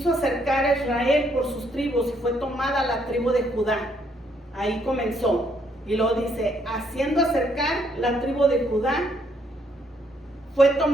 acercar a Israel por sus tribus, y fue tomada la tribu de Judá. Ahí comenzó. Y luego dice: haciendo acercar la tribu de Judá, fue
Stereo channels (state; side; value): normal; both; correlation 0.71